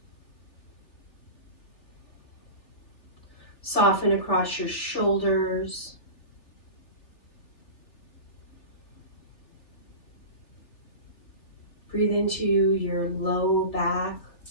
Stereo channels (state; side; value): late; right; 3.5 ms